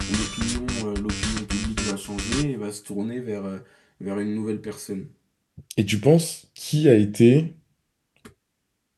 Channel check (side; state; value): both; identical; correlation 1.00